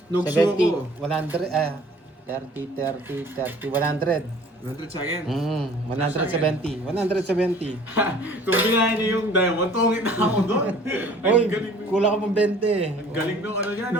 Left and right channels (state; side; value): normal; both; correlation 0.51